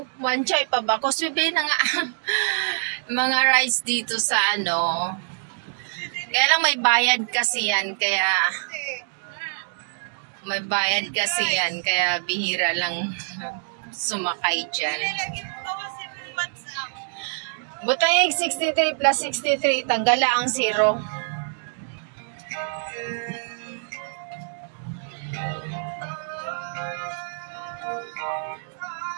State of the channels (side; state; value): left; silent; digital silence